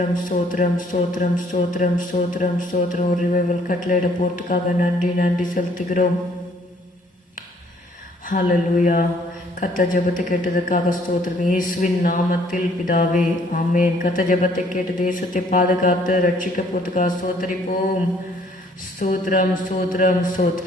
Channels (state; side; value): normal; both; correlation 0.62